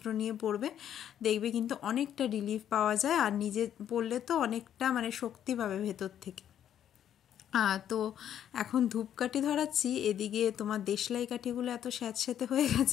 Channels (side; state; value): right; quieter; 10.1 dB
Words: নিয়ে পড়বে, দেখবে কিন্তু অনেকটা রিলিফ পাওয়া যায়। আর নিজে পড়লে তো অনেকটা মানে শক্তি পাবে ভেতর থেকে। তো এখন ধূপকাঠি ধরাচ্ছি, এদিকে তোমার দেশলাই কাঠিগুলো এত স্যাঁতস্যাঁতে হয়ে